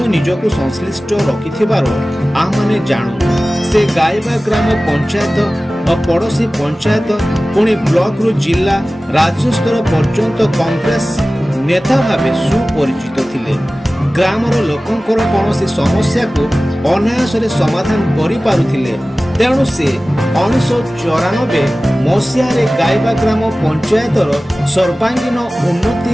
निजको संश्लिष्ट रखिथिबार आमाने जानू। से गाइबा ग्राम पंचायत और पड़ोसी पंचायत पुणी ब्लॉक रु जिला राज्य स्तर पर्यंत कांग्रेस नेता भावे सुपरिचित थिले। ग्रामर लोकंकर कौनसी समस्या को अनायास समाधान करि पारुथिले। तेणु से 1994 मसीह गाइबा ग्राम पंचायतर सर्वांगीन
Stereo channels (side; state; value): both; normal; correlation 0.97